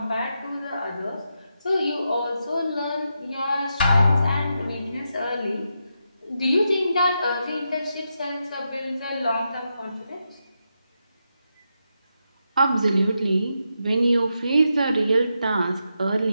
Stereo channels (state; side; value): inverted; both; correlation -0.85